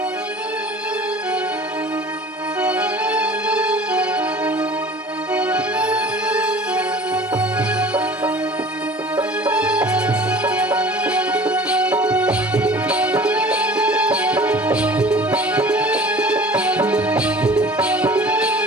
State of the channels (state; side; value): normal; both; correlation 0.45